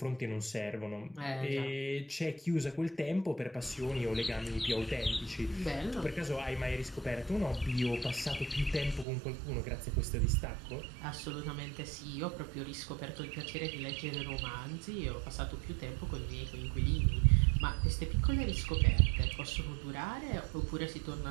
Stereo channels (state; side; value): drops out; left; at 9.1 s